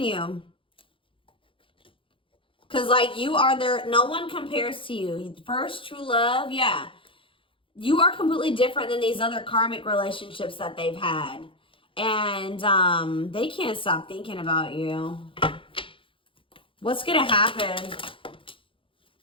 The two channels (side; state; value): right; late; 0.25 ms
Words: Because, like, you are there. No one compares to you. First true love. Yeah. You are completely different than these other karmic relationships that they've had. And they can't stop thinking about you. What's going to happen?